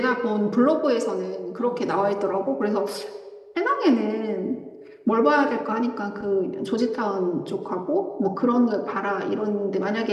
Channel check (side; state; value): both; identical; correlation 1.00